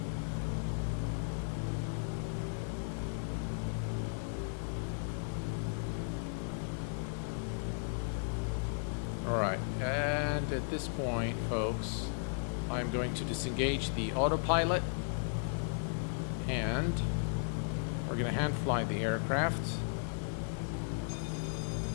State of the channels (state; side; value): silent; right; 54 dB below the other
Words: All right, and at this point, folks, I'm going to disengage the autopilot, and we're going to hand fly the aircraft.